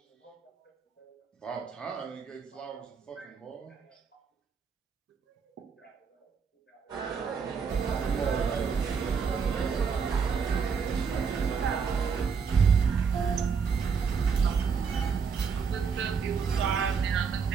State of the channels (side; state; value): left; quieter; 6.0 dB